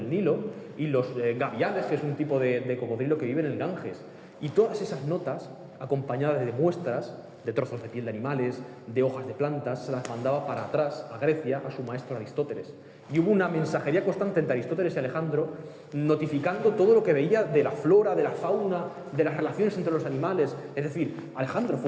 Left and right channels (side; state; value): both; identical; correlation 1.00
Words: Nilo y los gaviales, que es un tipo de cocodrilo que vive en el Ganges. Y todas esas notas, acompañadas de muestras, de trozos de piel de animales, de hojas de plantas, se las mandaba para atrás a Grecia, a su maestro Aristóteles. Y hubo una mensajería constante entre Aristóteles y Alejandro, notificando todo lo que veía de la flora, de la fauna, de las relaciones entre los animales. Es decir, Alejandro